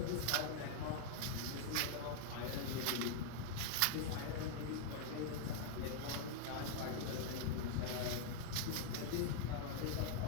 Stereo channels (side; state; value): both; different; correlation -0.01